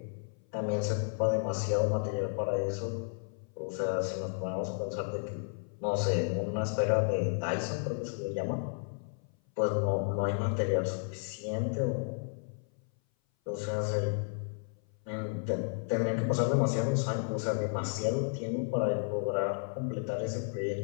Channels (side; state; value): right; silent; 56 dB below the other